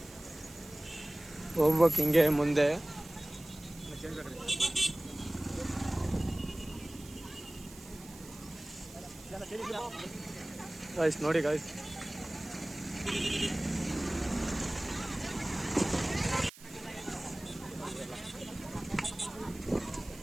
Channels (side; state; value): right; noise; hiss, 19 dB below the sound